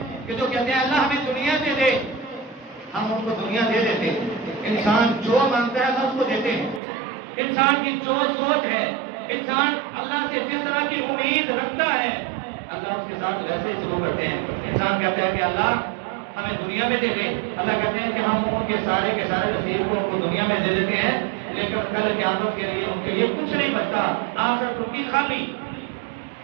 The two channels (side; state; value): left; drops out; at 6.8 s